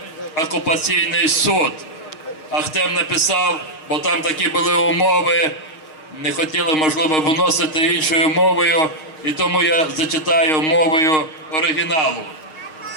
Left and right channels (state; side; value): late; right; 6.4 ms